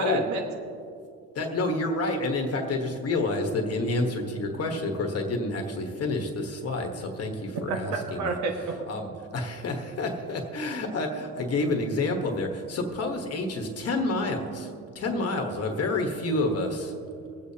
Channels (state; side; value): normal; both; correlation 0.26